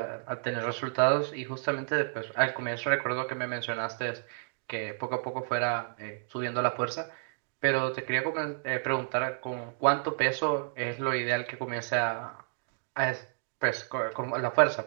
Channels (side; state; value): left; silent; digital silence